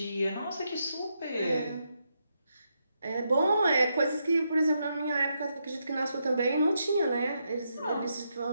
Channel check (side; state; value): both; inverted; correlation -0.81